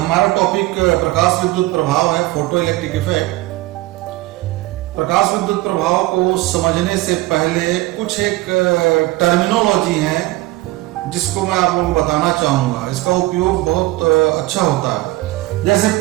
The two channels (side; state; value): left; quieter; 18.6 dB